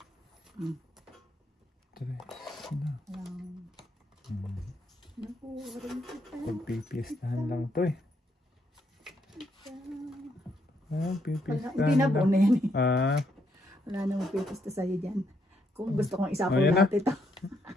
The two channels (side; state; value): both; normal; correlation 0.75